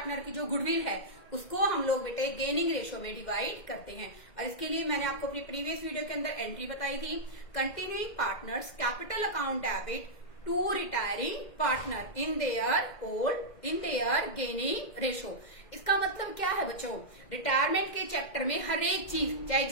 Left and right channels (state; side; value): late; right; 2.0 ms